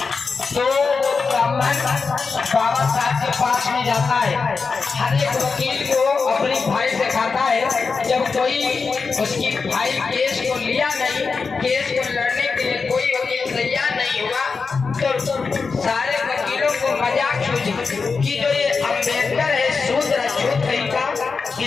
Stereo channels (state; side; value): quieter; right; 4.8 dB